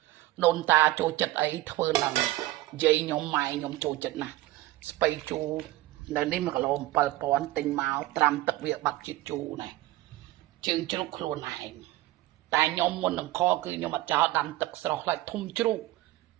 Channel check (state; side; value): quieter; left; 17.3 dB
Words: đồn ta chỗ chật ấy thưa là dây nhóm mày nhóm chỗ chật nè spay chu nên đi mà cái lồng bờ pòn tình máu tram tập việc bạc chít chu này chừng chú luôn này tại nhóm muốn làm kho cứ nhóm mà cho đâm tập sọc lại thum chú